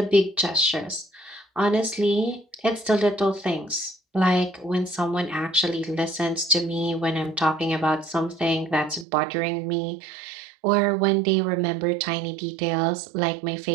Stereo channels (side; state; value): left; drops out; at 9.1 s